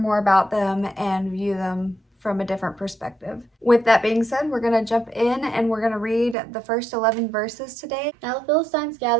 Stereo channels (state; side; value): drops out; left; at 6.4 s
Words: more about them and view them from a different perspective. With that being said, we're going to jump in and we're going to read the first 11 verses today. Now the Philistines